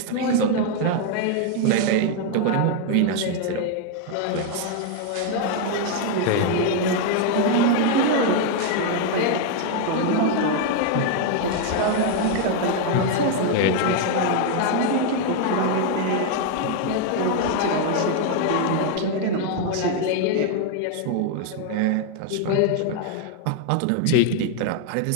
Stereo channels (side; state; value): both; different; correlation 0.00